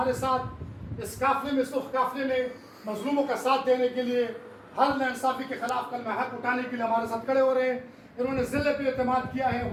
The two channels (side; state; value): both; identical; correlation 1.00